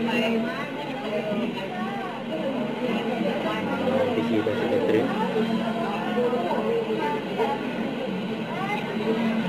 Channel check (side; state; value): both; identical; correlation 1.00